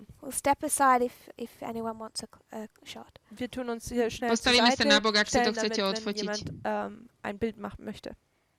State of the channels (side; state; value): both; identical; correlation 1.00